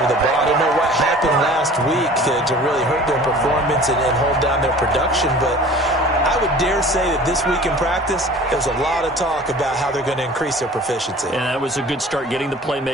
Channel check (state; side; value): normal; both; correlation 0.44